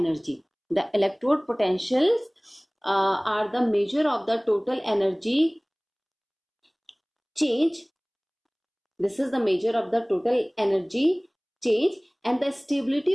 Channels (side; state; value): both; identical; correlation 1.00